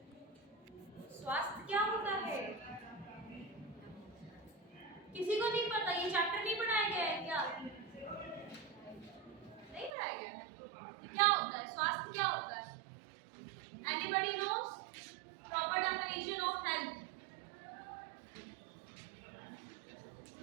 स्वास्थ्य क्या होता है? किसी को नहीं पता? ये चैप्टर नहीं पढ़ाया गया है क्या? नहीं पढ़ाया गया है? क्या होता है स्वास्थ्य? क्या होता है? Anybody knows proper definition of health?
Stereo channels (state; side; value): drops out; left; at 9.9 s